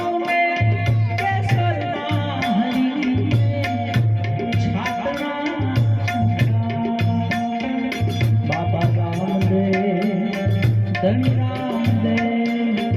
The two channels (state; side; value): identical; both; correlation 1.00